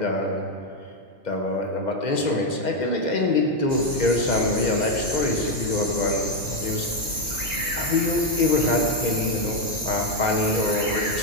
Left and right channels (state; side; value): late; left; 1.9 ms